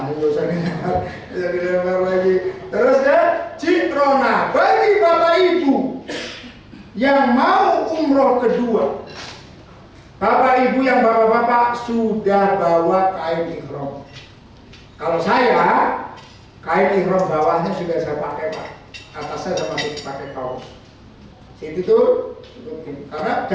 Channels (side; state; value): both; identical; correlation 1.00